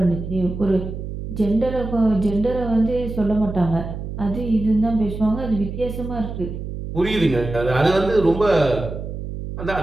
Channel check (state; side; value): noise; right; hum, 7 dB below the sound